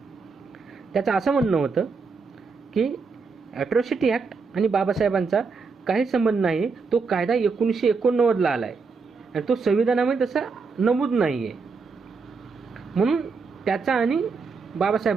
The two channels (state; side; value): quieter; left; 4.7 dB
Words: त्याचं असं म्हणणं होतं की ॲट्रॉसिटी ॲक्ट आणि बाबासाहेबांचा काही संबंध नाही. तो कायदा 1989ला आला आहे आणि तो संविधानामध्ये तसा नमूद नाही आहे, म्हणून त्याचा आणि